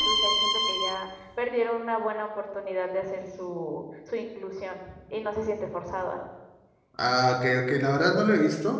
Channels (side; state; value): both; identical; correlation 1.00